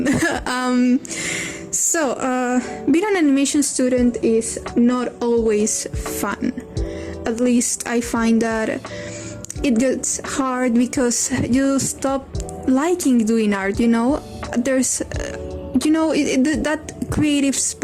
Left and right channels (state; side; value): identical; both; correlation 1.00